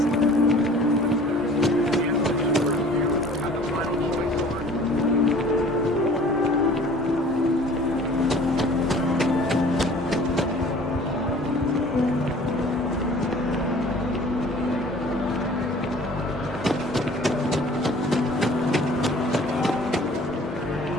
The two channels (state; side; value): normal; both; correlation 0.49